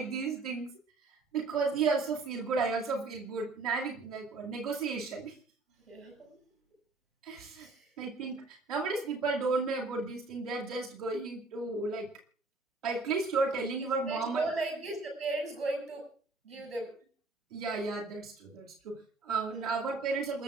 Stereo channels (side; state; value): left; quieter; 3.5 dB